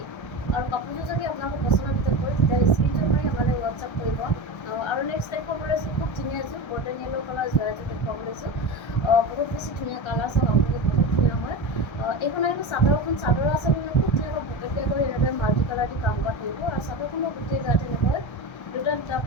আৰু কাপোৰযোৰ যদি আপোনালোকৰ পচন্দৰ ভিতৰত হয় তেতিয়াহ'লে স্ক্ৰীনশ্বট মাৰি আমালৈ হোৱাটছআপ কৰিব। আৰু নেক্সট দেখুৱাব লৈছোঁ খুব ধুনীয়া এযোৰ গল্ডেন য়েল্ল' কালাৰ যোৰা এযোৰ দেখুৱাব লৈছোঁ। বহুত বেছি ধুনীয়া কালাৰ, চাওক আপোনালোকে বহুত ধুনীয়া হয়। এইখন আহিব চাদৰখন। চাদৰ আচলতে খুব ধুনীয়াকৈ পকেটকাই কৰি এনেদৰে মাল্টি কালাৰ দি কাম কৰা থাকিব আৰু চাদৰখনৰ গোটেই গাত এনেকৈ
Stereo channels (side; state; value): right; late; 1.3 ms